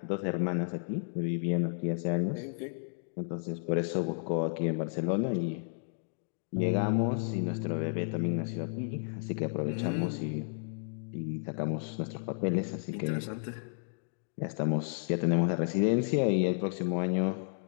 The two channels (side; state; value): right; silent; digital silence